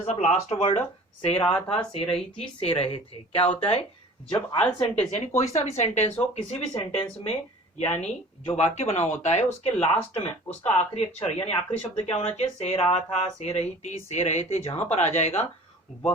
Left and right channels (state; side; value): normal; both; correlation 0.45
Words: of last word से रहा था, से रही थी, से रहे थे। क्या होता है जब ऑल सेंटेंस यानी कोई सा भी सेंटेंस हो, किसी भी सेंटेंस में यानी जो वाक्य बना होता है उसके लास्ट में उसका आखिरी अक्षर यानी आखिरी शब्द क्या होना चाहिए? से रहा था, से रही थी, से रहे थे। जहां पर आ जाएगा